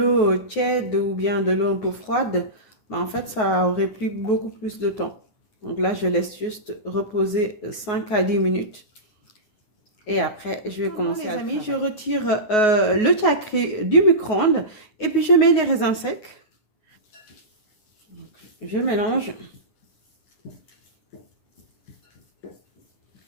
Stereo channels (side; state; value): right; late; 9.4 ms